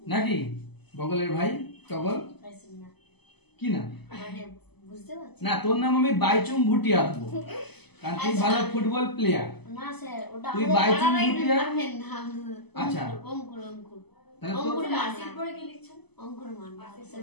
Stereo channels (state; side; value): late; right; 0.98 ms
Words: নাকি বগলের ভাই টগল? কি না বুঝতে পারছি না, তোর নাম আমি বাইচুং ভুটিয়া দেবো, কারণ তুই ভালো ফুটবল প্লেয়ার। না স্যার, ওটা তুই বাইচুং ভুটিয়া। আচ্ছা, আচ্ছা, অঙ্কুর অঙ্কুর তাহলে অঙ্কুর তোর মাসির পরে কি লিখছেন? অঙ্কুর মান স্যার